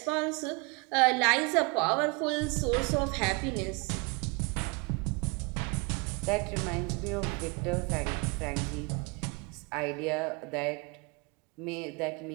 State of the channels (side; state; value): left; quieter; 30.7 dB